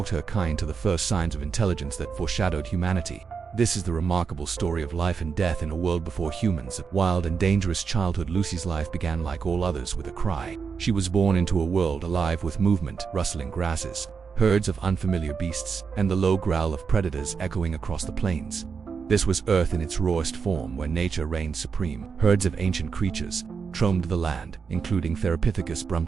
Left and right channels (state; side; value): quieter; left; 5.7 dB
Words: her kind to the first signs of intelligence that foreshadowed humanity. This is the remarkable story of life and death in a world before humans. Wild and dangerous childhood. Lucy's life began like all others with a cry. She was born into a world alive with movement, rustling grasses, herds of unfamiliar beasts, and the low growl of predators echoing across the plains. This was Earth in its rawest form, where nature reigned supreme. Herds of ancient creatures roamed the land, including Therapithecus